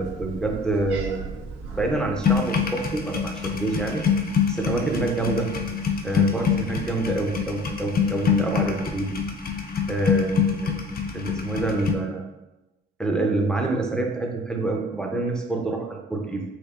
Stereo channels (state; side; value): normal; both; correlation 0.48